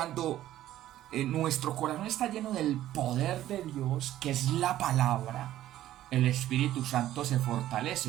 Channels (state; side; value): quieter; left; 13.4 dB